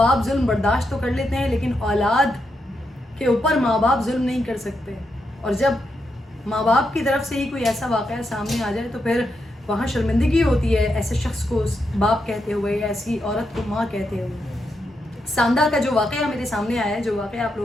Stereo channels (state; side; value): normal; both; correlation 0.83